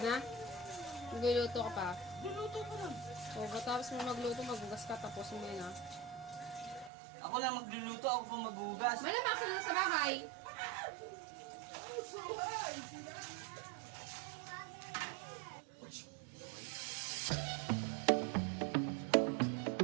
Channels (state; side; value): drops out; left; at 6.9 s